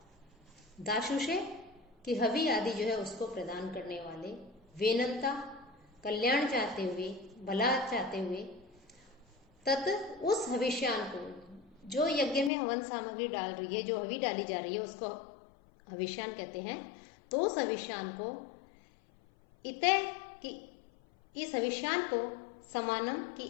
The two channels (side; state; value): right; drops out; at 12.5 s